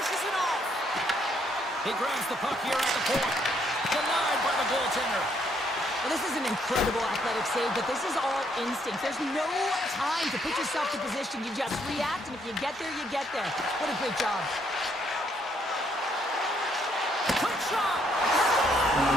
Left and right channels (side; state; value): both; normal; correlation 0.71